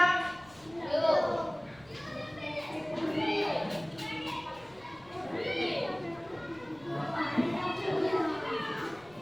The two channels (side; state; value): left; noise; rumble, 25 dB below the sound